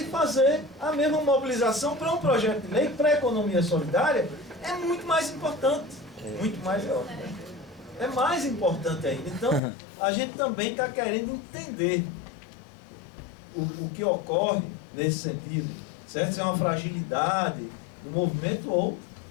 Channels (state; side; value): drops out; right; at 9.6 s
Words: fazer a mesma mobilização para um projeto de lei para a economia solidária. É muito mais importante, muito mais é mais importante ainda. Então, a gente também está querendo entender o que ocorre nesse sentido, certo? Se é uma fragilidade do movimento ou